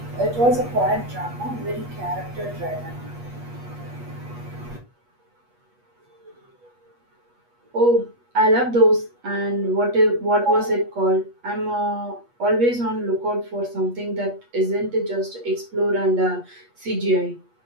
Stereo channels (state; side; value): late; left; 8.3 ms